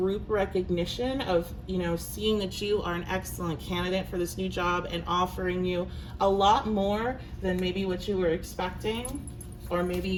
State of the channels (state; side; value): identical; both; correlation 1.00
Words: recognition of, you know, seeing that you are an excellent candidate for this new job and offering you a lot more than maybe what you were expecting. Or maybe